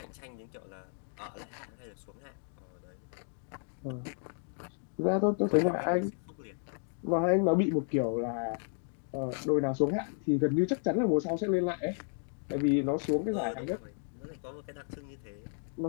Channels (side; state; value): right; silent; 56 dB below the other